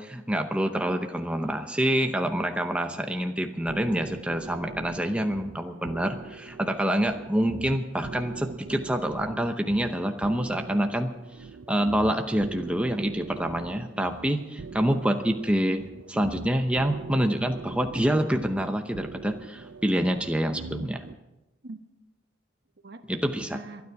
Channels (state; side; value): normal; both; correlation 0.87